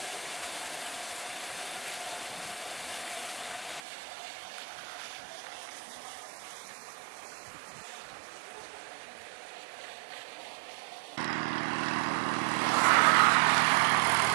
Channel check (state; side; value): drops out; left; at 3.8 s